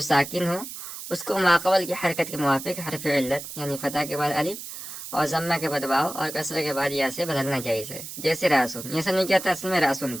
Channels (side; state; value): right; noise; hiss, 10 dB below the sound